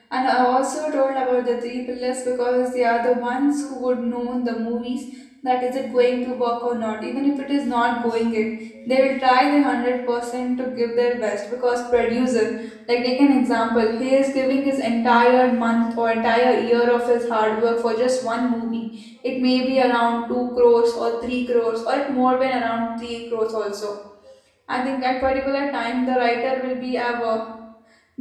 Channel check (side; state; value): both; identical; correlation 1.00